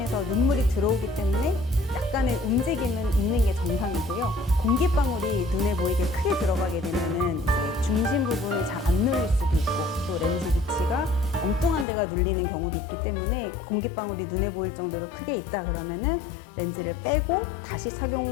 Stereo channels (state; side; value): drops out; right; at 11.9 s